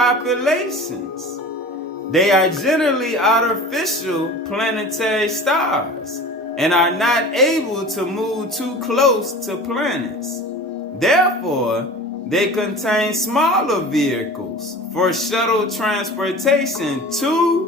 They are generally artificial planetary stars and are not able to move too close to planets. Therefore, they contain smaller vehicles for shuttle transportation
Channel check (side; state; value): both; normal; correlation 0.38